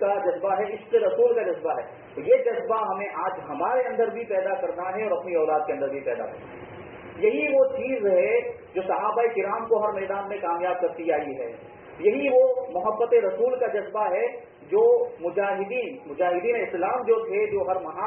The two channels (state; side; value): identical; both; correlation 1.00